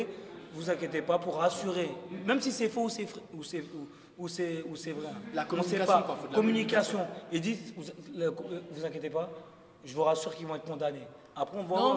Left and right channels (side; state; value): both; identical; correlation 1.00